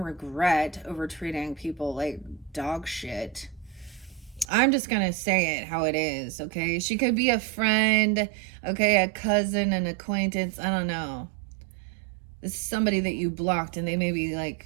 over treating people like dog shit. I'm just gonna say it how it is, okay? She could be a friend, okay, a cousin, an acquaintance, I don't know. This is somebody that you blocked, and they may be like,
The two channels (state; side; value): drops out; left; at 4.5 s